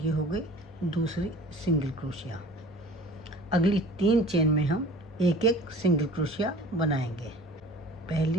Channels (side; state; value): both; normal; correlation 0.45